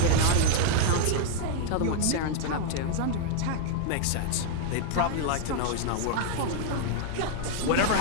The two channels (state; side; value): different; both; correlation 0.00